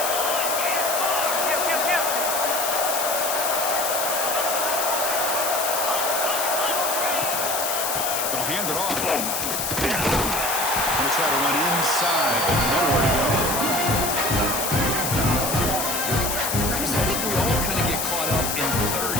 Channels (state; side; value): noise; left; hiss, 1 dB below the sound